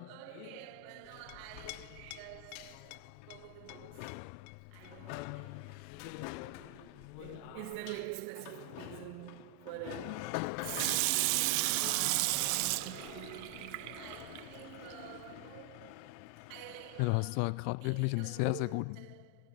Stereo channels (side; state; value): both; different; correlation 0.00